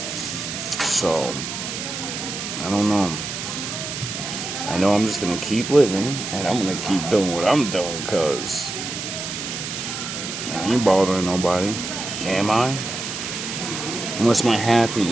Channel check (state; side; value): noise; right; hiss, 6 dB below the sound